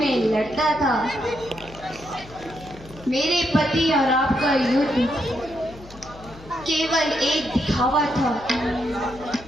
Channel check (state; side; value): noise; left; hum, 19 dB below the sound